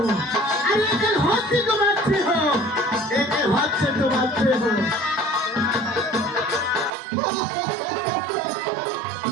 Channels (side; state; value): left; drops out; at 6.9 s